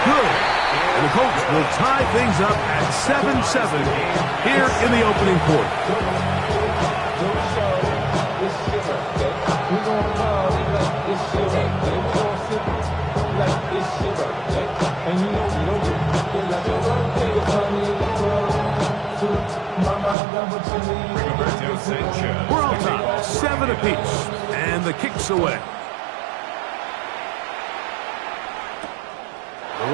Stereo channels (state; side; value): drops out; left; at 20.2 s